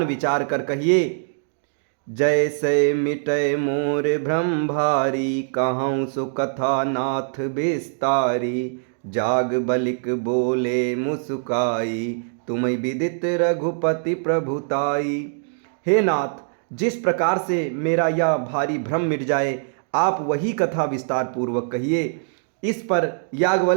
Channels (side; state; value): left; silent; digital silence